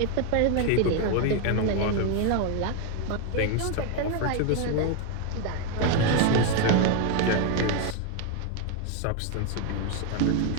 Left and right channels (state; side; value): different; both; correlation 0.01